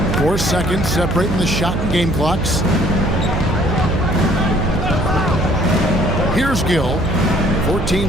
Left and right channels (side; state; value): right; noise; hum, 3 dB below the sound